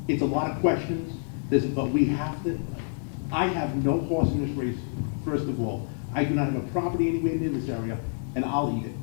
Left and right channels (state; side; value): silent; right; digital silence